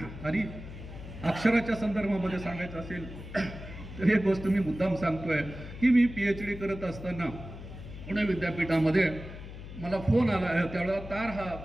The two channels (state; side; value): noise; left; hum, 12 dB below the sound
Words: आणि अक्षराच्या संदर्भामध्ये सांगायचं असेल तर एक गोष्ट मी मुद्दाम सांगतोय की मी PhD करत असताना पुणे विद्यापीठामध्ये मला फोन आला. त्यावेळेला तार हा